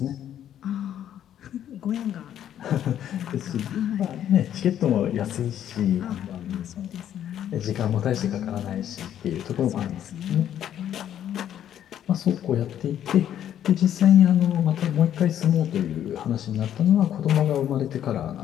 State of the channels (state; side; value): quieter; right; 10.5 dB